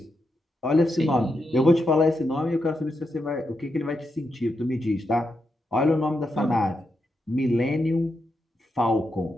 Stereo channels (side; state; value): both; normal; correlation 0.85